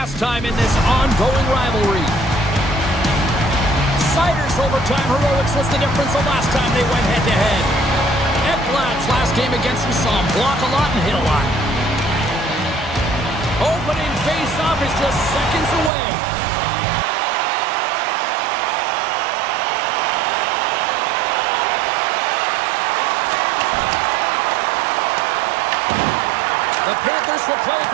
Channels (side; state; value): left; drops out; at 15.9 s